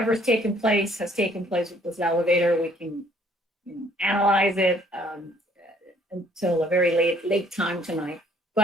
taken place has taken place with this elevator. We can analyze it until a very late time tonight.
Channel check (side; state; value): both; normal; correlation 0.61